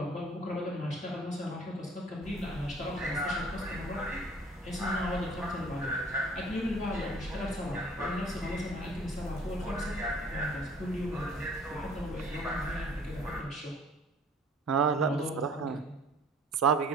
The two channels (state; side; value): normal; both; correlation 0.52